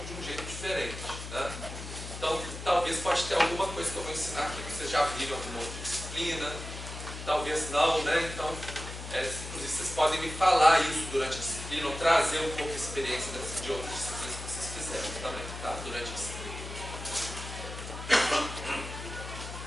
de um jeito diferente, né? Então, talvez pode ter alguma coisa que eu vou ensinar aqui que vocês já viram em alguma outra disciplina, talvez não, né? Então, inclusive vocês podem me falar isso durante a disciplina, ou trazer um pouco a experiência de outras disciplinas que vocês fizeram também, tá? Durante a disciplina.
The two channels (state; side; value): noise; left; hum, 9 dB below the sound